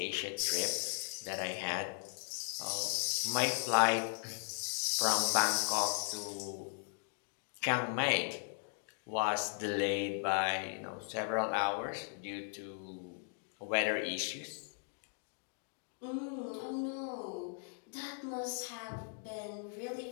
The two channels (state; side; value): silent; right; 53 dB below the other